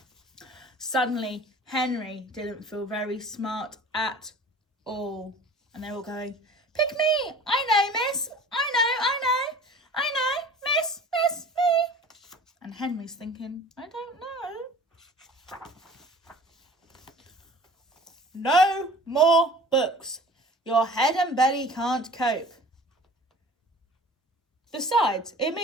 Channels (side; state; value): both; normal; correlation 0.44